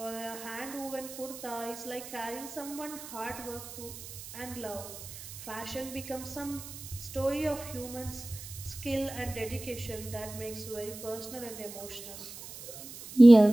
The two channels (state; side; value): noise; right; hiss, 13 dB below the sound